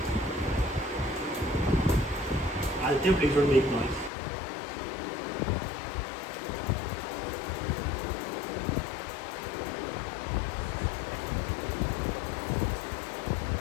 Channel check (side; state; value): right; drops out; at 4.1 s